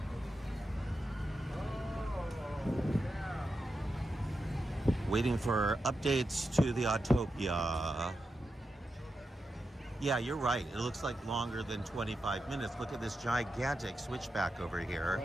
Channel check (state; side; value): normal; both; correlation 0.88